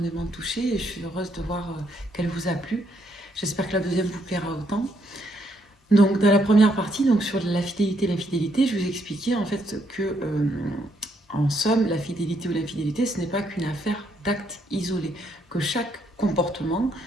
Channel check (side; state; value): both; normal; correlation 0.73